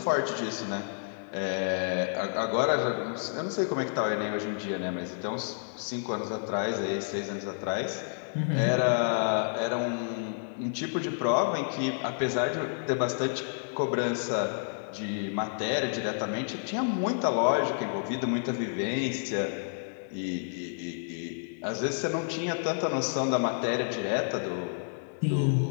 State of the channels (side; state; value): right; silent; digital silence